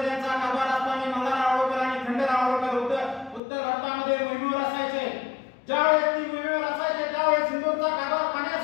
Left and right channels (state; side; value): drops out; right; at 3.4 s